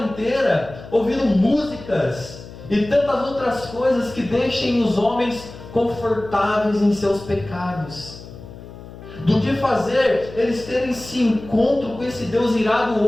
inteira ouvindo músicas e tantas outras coisas que deixem os homens confortáveis em seus pecados, do que fazer eles terem esse encontro com esse Deus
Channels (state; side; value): noise; left; hum, 16 dB below the sound